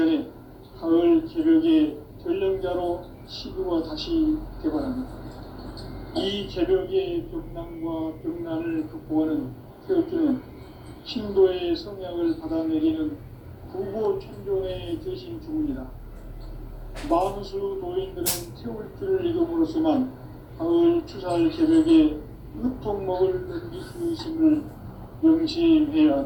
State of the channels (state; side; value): identical; both; correlation 1.00